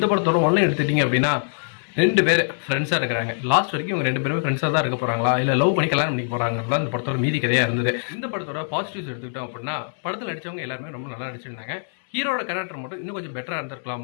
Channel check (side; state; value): right; silent; digital silence